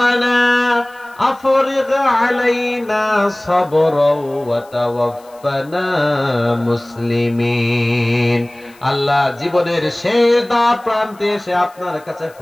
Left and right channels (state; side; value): noise; left; hiss, 28 dB below the sound